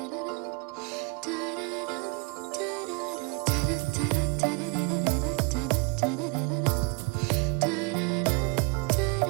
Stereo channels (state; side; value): quieter; left; 30.8 dB